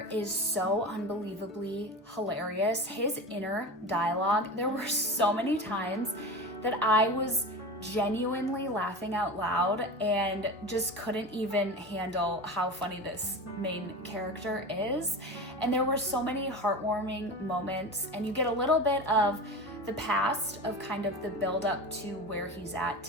is so unbelievably hilarious. His inner dialogue, there were so many times that I was genuinely laughing out loud and just couldn't even handle how funny this main character is. And there were so many heartwarming moments, and you get a little bit of the past of kind of the build up to where he's at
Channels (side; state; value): both; normal; correlation 0.29